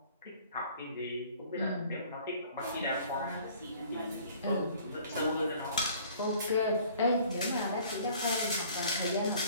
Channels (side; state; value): both; inverted; correlation -0.53